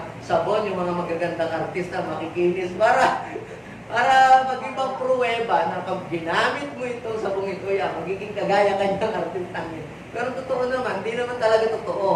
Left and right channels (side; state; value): both; identical; correlation 1.00